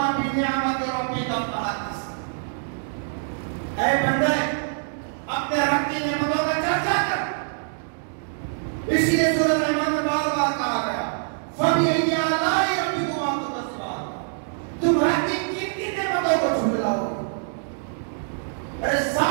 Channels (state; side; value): silent; left; digital silence